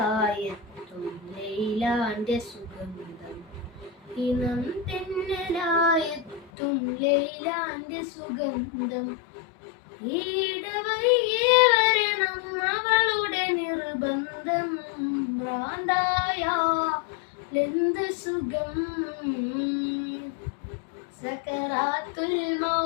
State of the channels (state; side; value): drops out; right; at 6.5 s